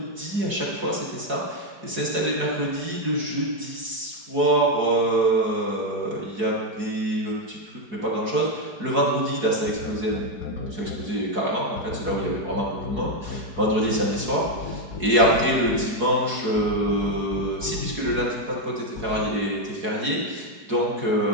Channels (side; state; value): left; late; 4.7 ms